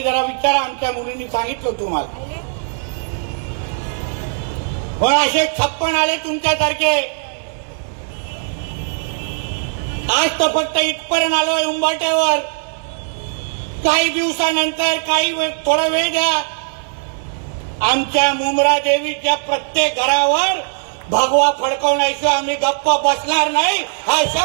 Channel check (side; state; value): left; silent; 67 dB below the other